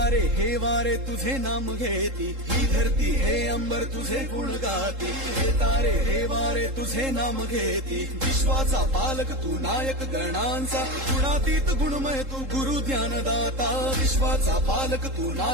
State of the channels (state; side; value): late; left; 3.7 ms